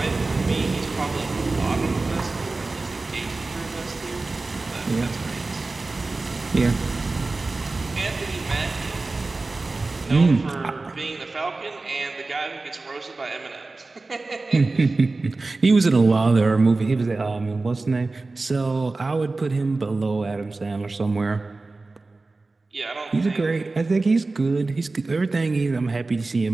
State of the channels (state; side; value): quieter; left; 3.5 dB